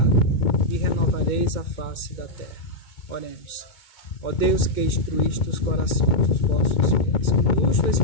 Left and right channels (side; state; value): right; late; 2.2 ms